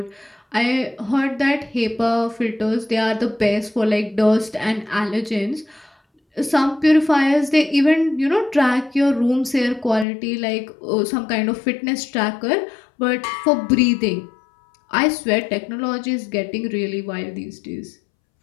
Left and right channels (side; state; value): right; drops out; at 10.1 s